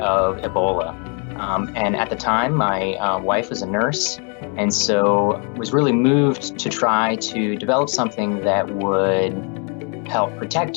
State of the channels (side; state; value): right; quieter; 38.3 dB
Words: Ebola. And at the time, my wife was a nurse, and so was really moved to try to develop something that would help